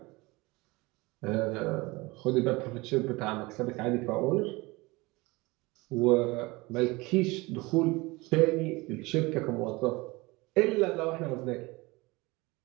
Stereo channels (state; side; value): quieter; left; 23.3 dB